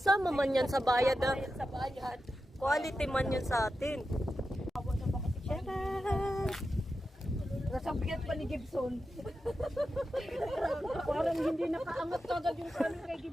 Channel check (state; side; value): normal; both; correlation 0.90